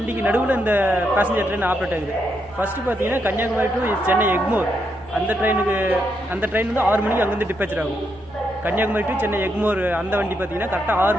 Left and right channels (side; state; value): left; noise; hum, 27 dB below the sound